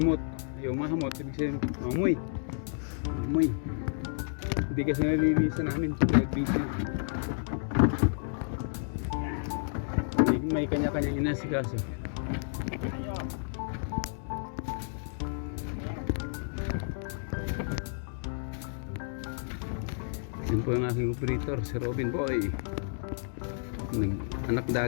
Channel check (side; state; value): right; silent; digital silence